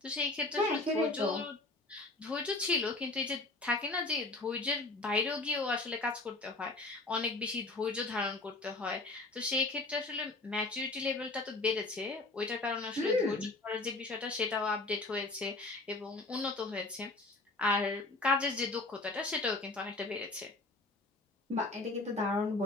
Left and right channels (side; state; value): right; quieter; 3.1 dB